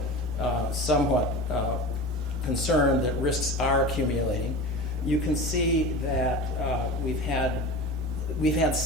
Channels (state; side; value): normal; both; correlation 0.31